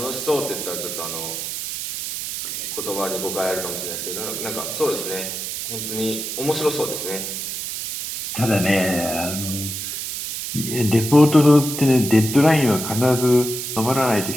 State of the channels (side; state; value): right; noise; hiss, 5 dB below the sound